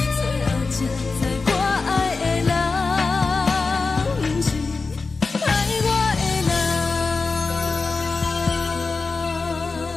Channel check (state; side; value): quieter; right; 4.2 dB